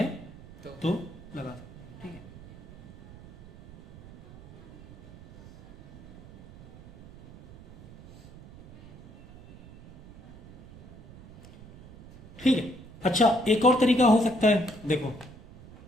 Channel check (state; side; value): noise; right; rumble, 21 dB below the sound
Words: तो लगा सकते हैं, ठीक है। ठीक है। अच्छा, एक और तरीका हो सकता है, देखो